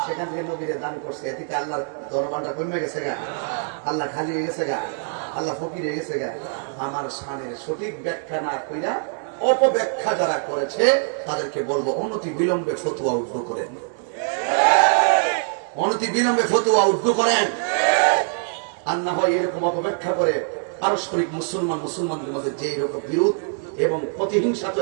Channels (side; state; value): left; silent; 63 dB below the other